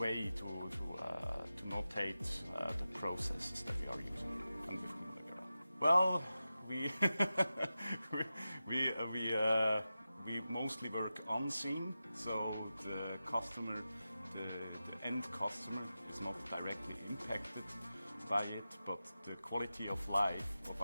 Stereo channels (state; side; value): inverted; both; correlation -0.93